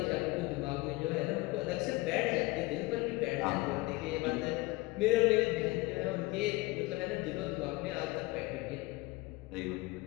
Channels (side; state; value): right; quieter; 21.5 dB